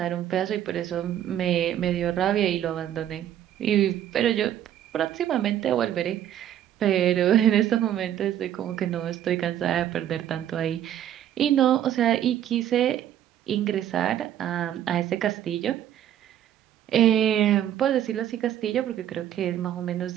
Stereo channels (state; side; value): quieter; left; 11.1 dB